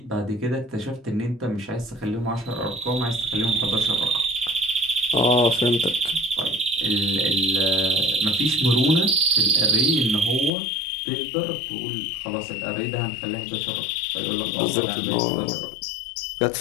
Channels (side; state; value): right; drops out; at 10.5 s